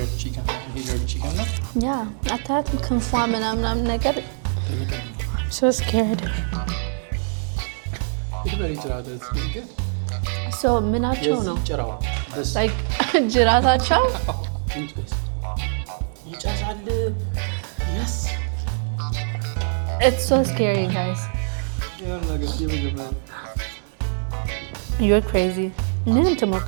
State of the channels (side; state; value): left; silent; digital silence